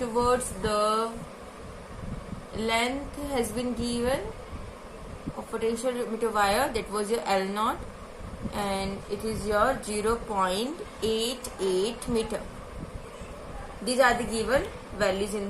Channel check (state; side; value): identical; both; correlation 1.00